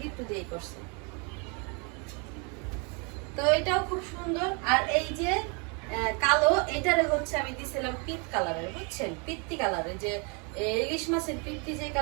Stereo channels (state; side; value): quieter; left; 33.9 dB